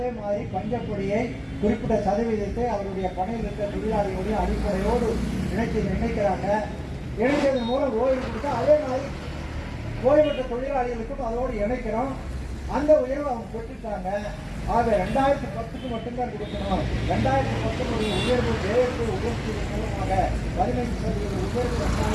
மாதிரி பஞ்சப்பொடியை குறிப்பிட்ட சதவீதத்தை அவருடைய பணியில் இருக்கிற தொழிலாளிகளுடைய அடிப்படையோடு இணைக்கிறாங்க. இணைத்ததன் மூலம் ஓய்வு கொடுத்தா அதே மாதிரி ஓய்வு பெற்ற தொழிலாளிகளுக்கும் அதோடு இணைக்கிறோம். அந்த உயர்வு அவங்க பெற்றுட்டாங்க. ஆக 2010க்கு மட்டும்தான் கொடுக்கணும். 2010 உயர்வு தேர்வு உயர்த்தியதன் மூலமாக 15% உயர்வு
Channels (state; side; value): identical; both; correlation 1.00